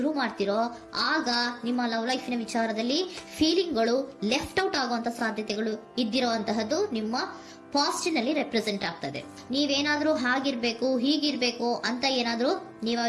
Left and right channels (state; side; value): identical; both; correlation 1.00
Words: ಮಾಡ್ತಿರೋ, ಆಗ ನಿಮ್ಮ ಲವ್ ಲೈಫಿನ ವಿಚಾರದಲ್ಲಿ ಫೀಲಿಂಗ್ಗಳು ಲೆಫ್ಟ್ ಔಟ್ ಆಗುವಂತ ಸಾಧ್ಯತೆಗಳು ಇದ್ದಿರುವಂತಹದ್ದು ನಿಮ್ಮ ಪಾಸ್ಟಿನಲ್ಲಿ ರೆಪ್ರೆಸೆಂಟ್ ಆಗ್ತದೆ. ನೀವೇನಾದ್ರೂ ಹಾಗಿರ್ಬೇಕು ಹೀಗಿರ್ಬೇಕು ಅಂತ ಏನಾದ್ರೂ ನೀವು